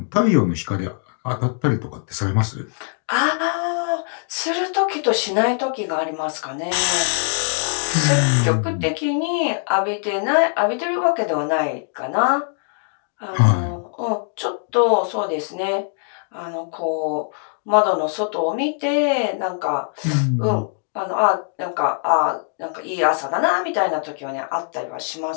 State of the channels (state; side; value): silent; right; 62 dB below the other